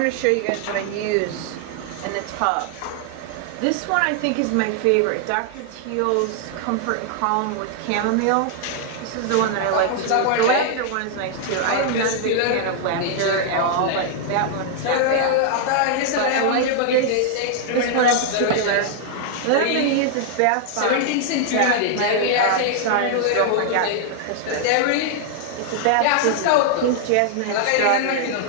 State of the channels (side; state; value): both; different; correlation 0.00